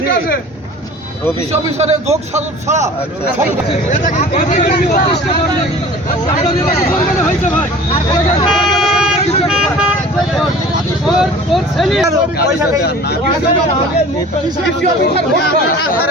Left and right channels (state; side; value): normal; both; correlation 0.43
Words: আছে। অফিসারের যোগ সাজত ছাড়া